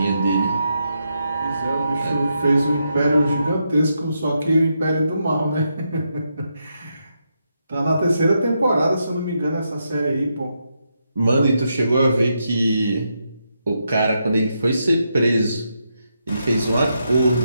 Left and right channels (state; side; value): inverted; both; correlation -0.82